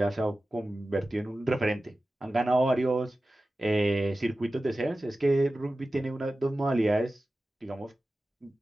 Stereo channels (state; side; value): normal; both; correlation 0.95